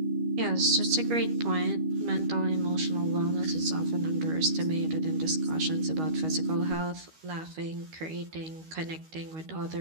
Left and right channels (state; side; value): late; left; 13 ms